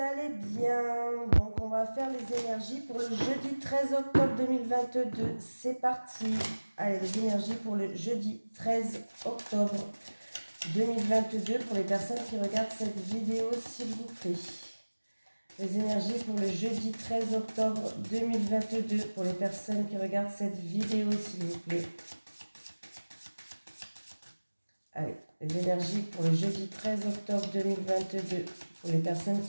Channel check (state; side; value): inverted; both; correlation -1.00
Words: bien. Donc on va faire les énergies pour le jeudi 13 octobre 2022. C'est parti. Allez, les énergies pour le jeudi 13 octobre 2022 pour les personnes qui regardent cette vidéo, s'il vous plaît. Les énergies pour le jeudi 13 octobre 2022 pour les personnes qui regardent cette vidéo, s'il vous plaît. Allez, les énergies pour le jeudi 13 octobre 2022 pour les personnes